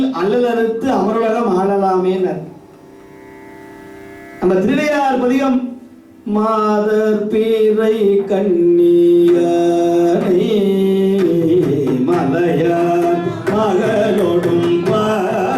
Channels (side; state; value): both; identical; correlation 1.00